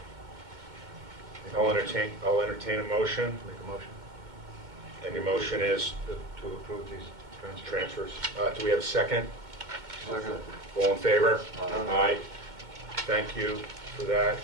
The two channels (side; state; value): left; late; 2.2 ms